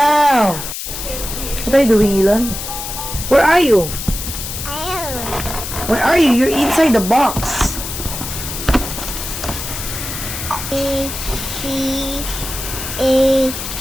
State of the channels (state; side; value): noise; left; hiss, 7 dB below the sound